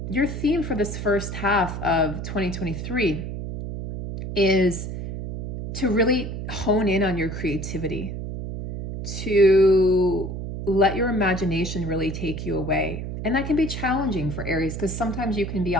your theme for this first half of 2023 is to really hone in on your creativity, to let your imagination really take you away. And that can be challenging for Aries because sometimes you can be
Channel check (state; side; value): noise; right; hum, 6 dB below the sound